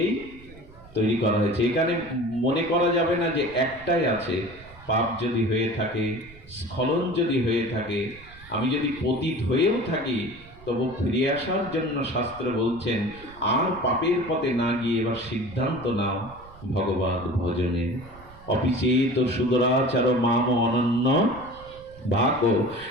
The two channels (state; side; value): noise; right; rumble, 21 dB below the sound